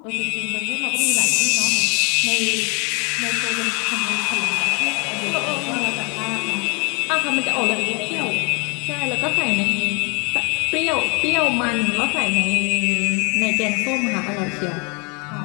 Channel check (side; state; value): right; quieter; 33.4 dB